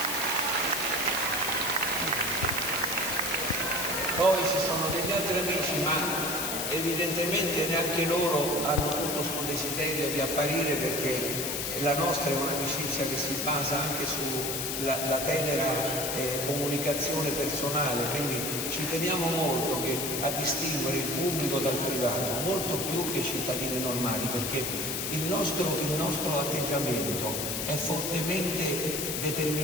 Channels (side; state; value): left; noise; hiss, 2 dB below the sound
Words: Poi ci sono degli altri amici, ma evidentemente neanche loro hanno tutto questo desiderio di apparire, perché la nostra è un'amicizia che si basa anche sulla tenera comunicazione personale, quindi ci teniamo molto a distinguere il pubblico dal privato, molto più che i cittadini normali, perché il nostro atteggiamento è fortemente